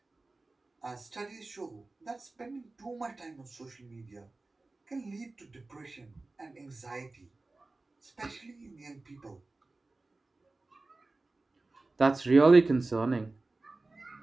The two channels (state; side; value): quieter; left; 3.3 dB